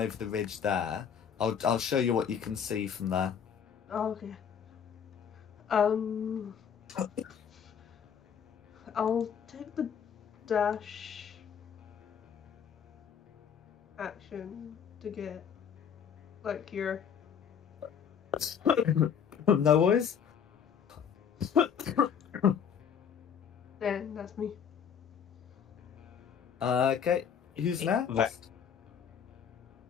the ridge there. I'll show you what you can see from there. Oh, okay. I'll take the dash action to get like here. No worries. Then that's me. Okay, who's next?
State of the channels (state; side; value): quieter; right; 7.7 dB